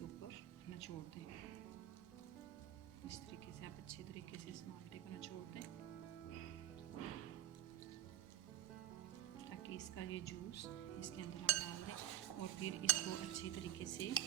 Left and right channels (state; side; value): quieter; left; 13.4 dB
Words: ऊपर निचोड़ दें। इस तरीके से आप अच्छे तरीके से इस माल्टे को निचोड़ दें ताकि इसका ये जूस इसके अंदर हम डाल दें। और फिर इसको अच्छे तरीके से